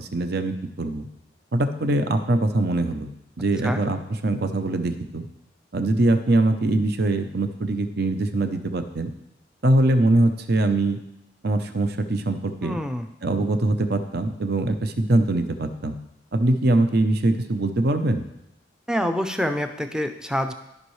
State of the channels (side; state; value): both; normal; correlation 0.80